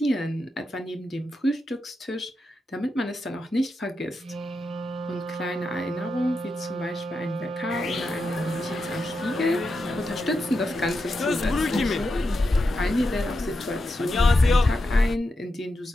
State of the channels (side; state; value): both; normal; correlation 0.87